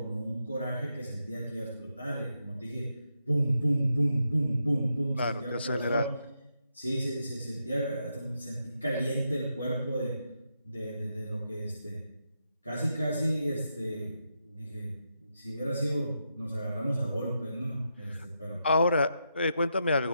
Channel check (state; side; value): inverted; both; correlation -0.83